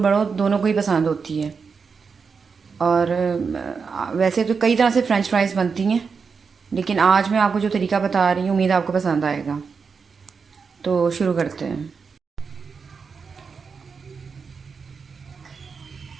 दोनों को ही पसंद होती है। और वैसे तो कई तरह से फ्रेंच फ्राइज़ बनती हैं, लेकिन आज मैं आपको जो तरीका बता रही हूँ उम्मीद आपको पसंद आएगा। तो शुरू करते हैं।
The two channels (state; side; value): quieter; left; 5.5 dB